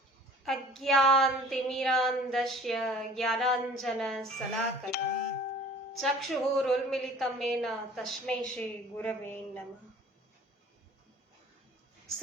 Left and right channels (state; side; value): normal; both; correlation 0.49